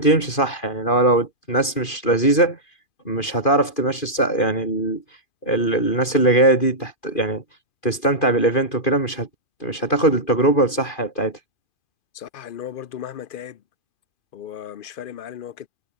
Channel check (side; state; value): right; late; 2.5 ms